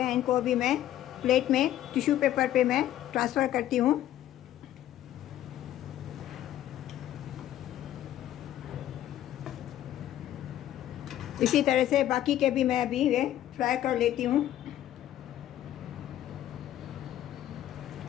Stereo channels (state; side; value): quieter; right; 12.5 dB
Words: इनको अभी मैं प्लेट में टिश्यू पेपर पे मैं ट्रांसफ़र करती हूँ। इसी तरह से बाकी के भी मैं अभी ये फ्राई कर लेती हूँ।